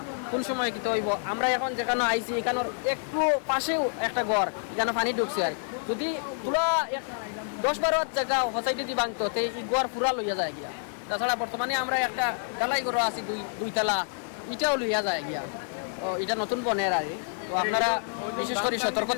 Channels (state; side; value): silent; right; 57 dB below the other